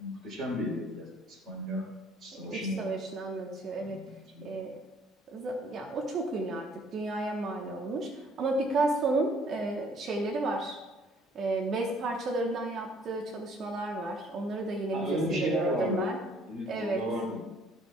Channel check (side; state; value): both; normal; correlation 0.60